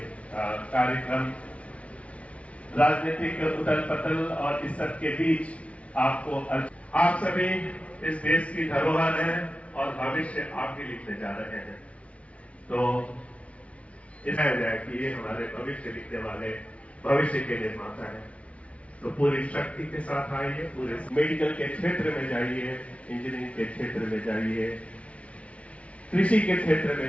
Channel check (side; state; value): right; late; 0.063 ms